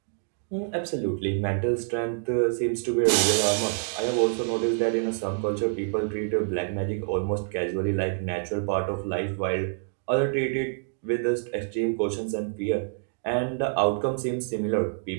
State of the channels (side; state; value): left; silent; digital silence